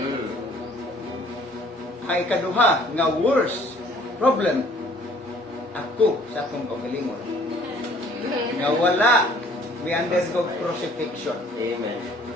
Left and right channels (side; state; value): both; normal; correlation 0.56